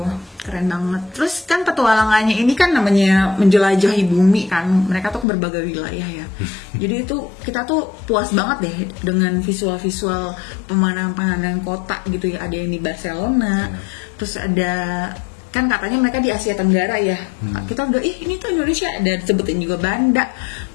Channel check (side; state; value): right; drops out; at 5.2 s